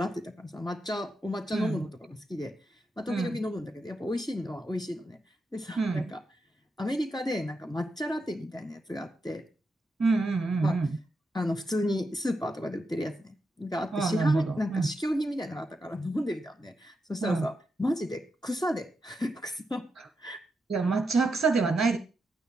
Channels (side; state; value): both; normal; correlation 0.85